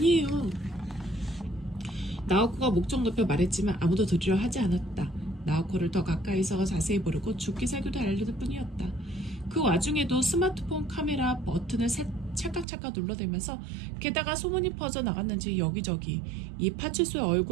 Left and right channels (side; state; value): left; drops out; at 12.7 s